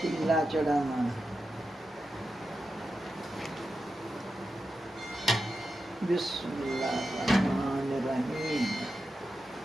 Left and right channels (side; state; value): both; normal; correlation 0.90